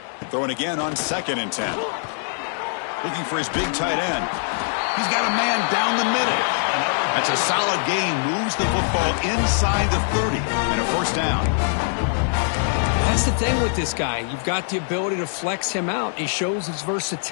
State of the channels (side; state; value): right; silent; digital silence